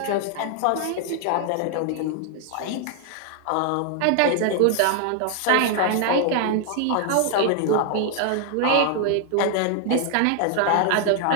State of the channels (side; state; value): both; different; correlation 0.00